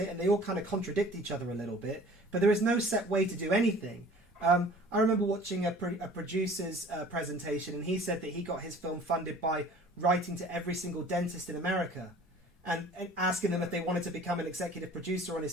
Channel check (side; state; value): both; normal; correlation 0.48